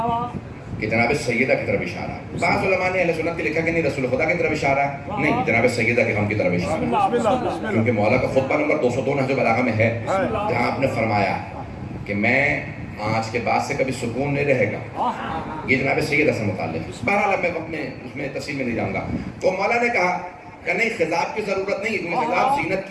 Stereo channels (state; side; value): identical; both; correlation 1.00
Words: کہ جناب سیدہ کی طرف اشارہ ہے۔ بعض علماء نے اہل سنت کے لکھا کہ نہیں رسول خدا کی طرف اشارہ ہے، نہیں جناب سیدہ کے غم کی طرف اشارہ ہے، کیونکہ مولا کا خطبہ نمبر 202 نہج البلاغہ میں ہے، جہاں آپ نے فرمایا کہ میں آج کے بعد سے کبھی سکون نہیں رہے گا، یہ جناب سیدہ سے متعلق ہے۔ بہرحال میں اپنے اس میں تفصیل میں نہیں جاؤں گا۔ تو مولا نے کہا کہ نہیں خضاب کی ضرورت نہیں ہے، کیونکہ خضاب زینت